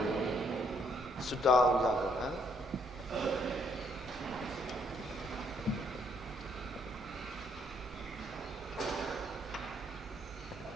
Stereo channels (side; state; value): both; normal; correlation 0.69